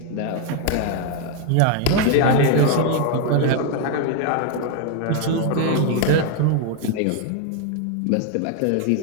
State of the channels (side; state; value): both; different; correlation 0.00